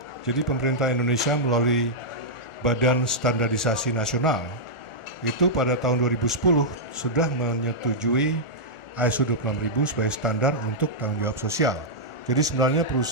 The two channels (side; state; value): right; late; 1.4 ms